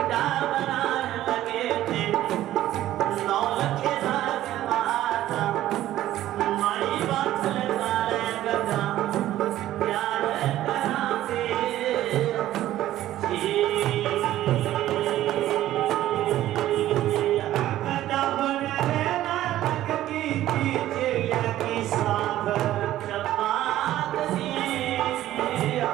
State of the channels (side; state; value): left; quieter; 13.8 dB